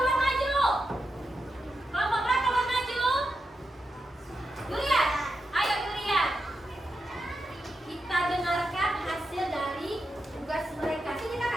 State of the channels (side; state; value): both; normal; correlation 0.88